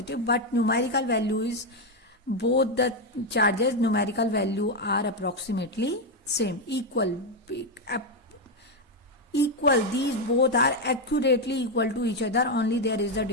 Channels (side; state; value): both; normal; correlation 0.05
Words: but numerical value is, both the charges numerical value are approximately same, equal. These both are accurately equal to each other, only there is a